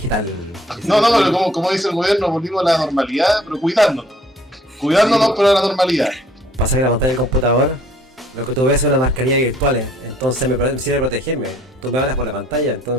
No, pero como dice el gobierno, volvimos a la normalidad, pero cuidándonos. Cuidándonos, pero a la normalidad. Pasa que la pantalla del computador, lo que tú ves son las mascarillas virtuales. Entonces me sirve protegerme. Tú me hablas por la pantalla,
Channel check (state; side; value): normal; both; correlation 0.60